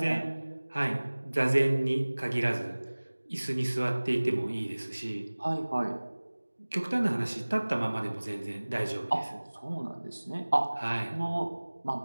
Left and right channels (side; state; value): both; inverted; correlation -1.00